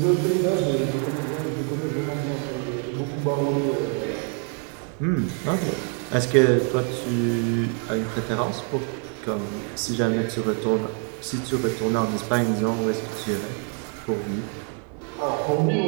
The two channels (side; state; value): left; quieter; 40.0 dB